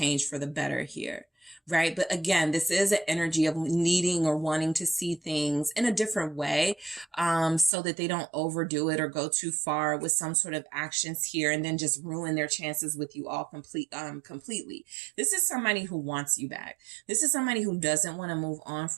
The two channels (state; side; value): drops out; left; at 7.7 s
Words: for the better here, right? But again, this is an energy of needing or wanting to see things in a different way, so that they don't overdo it or go too far with some sort of actions here and then just ruin their chances with you all completely. This is somebody who wants you back. This is somebody who doesn't want to move on